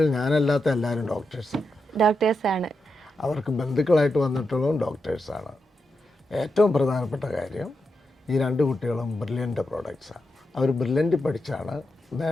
ഞാനല്ലാത്ത എല്ലാവരും ഡോക്ടേഴ്സാണ്. അവർക്ക് ബന്ധുക്കളായിട്ട് വന്നിട്ടുള്ളതും ഡോക്ടേഴ്സാണ്. ഏറ്റവും പ്രധാനപ്പെട്ട കാര്യം, ഈ 2 കുട്ടികളും ബ്രില്യൻ്റ് പ്രോഡക്ട്സാണ്. അവർ ബ്രില്യൻ്റ് പഠിച്ചാണ്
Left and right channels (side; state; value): both; normal; correlation 0.86